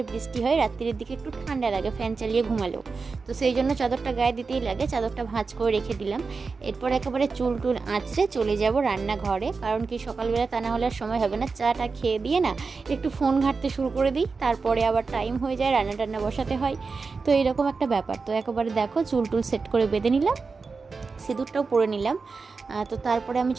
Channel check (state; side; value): quieter; left; 4.5 dB